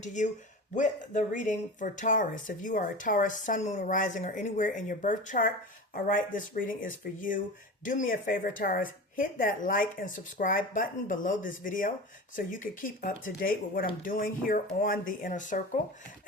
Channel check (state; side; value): normal; both; correlation 0.31